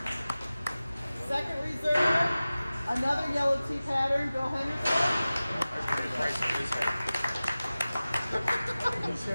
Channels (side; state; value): both; inverted; correlation -0.97